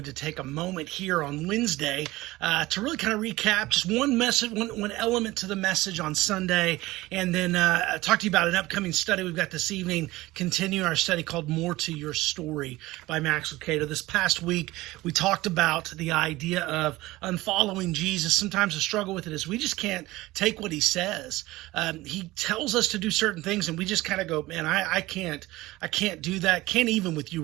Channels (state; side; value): quieter; left; 18.9 dB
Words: to take a moment here on Wednesday to really kind of recap just one message, one element to the message on Sunday, and then talk to you about an upcoming study we've got this evening, continuing our study called More to Your Story by Max Lucado. This past week, we talked about the idea of unfollowing Jesus. Sometimes the struggle with it is we just can't take what he says. He tells us to do certain things, and we just kind of go, man, I can't do that. Can't even with you